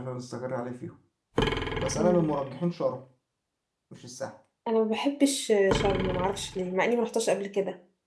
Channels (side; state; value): both; identical; correlation 1.00